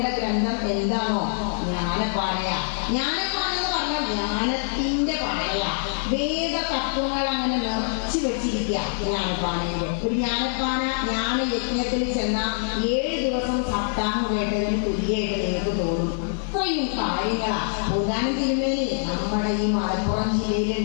ഗ്രന്ഥം എന്താണോ? ജ്ഞാനപ്പാനയാ. ജ്ഞാനപ്പാന എന്ന് പറഞ്ഞാൽ ജ്ഞാനത്തിന്റെ പാനയാ. വേദ തത്വങ്ങൾ അങ്ങനെ നിറച്ചു വെച്ചിരിക്കുക ജ്ഞാനപ്പാനയില്. ഒരു ജ്ഞാനപ്പാന ജ്ഞാന യജ്ഞത്തിൽ ചെന്ന 7 ദിവസം സപ്താഹം കേട്ടതിന് തുല്യമായിട്ട് നിങ്ങൾക്ക് തോന്നും. അത്രയും കാര്യങ്ങളാ. ഭൂതാനം തിരുമേനി നമ്മുടെ ഈ മലപ്പുറം ജില്ലയിൽ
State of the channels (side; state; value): right; silent; digital silence